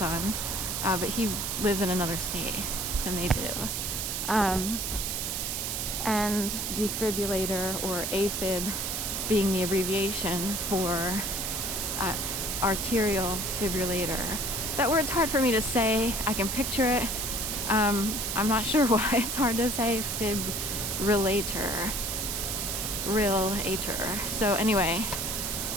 but he lives in another state than they do. And defibrillator, or AFib, being the abbreviation for arterial fibrillator. That word's hard for me to say. I can picture it. I'm not sure why it's hard to say. Fibrillator. Relator. So anyway,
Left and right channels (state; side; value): noise; right; hiss, 2 dB below the sound